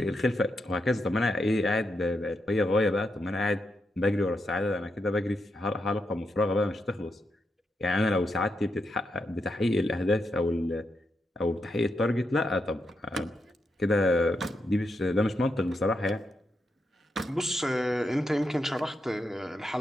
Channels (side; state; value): both; normal; correlation 0.84